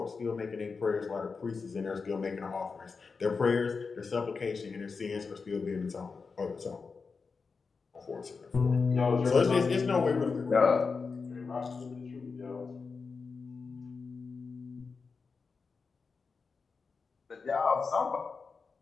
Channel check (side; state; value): right; quieter; 4.8 dB